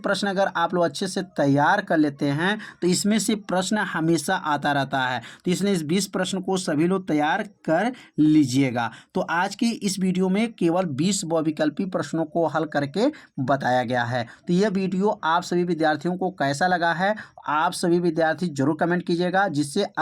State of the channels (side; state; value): both; identical; correlation 1.00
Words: अगर आप लोग अच्छे से तैयार कर लेते हैं तो इसमें से प्रश्न हमेशा आता रहता है। तो इसलिए इस 20 प्रश्न को सभी लोग तैयार कर लीजिएगा। तो आज की इस वीडियो में केवल 20 बहुविकल्पी प्रश्नों को हल करके बताया गया है। तो यह वीडियो आप सभी विद्यार्थियों को कैसा लगा है आप सभी विद्यार्थी जरूर कमेंट कीजिएगा, जिससे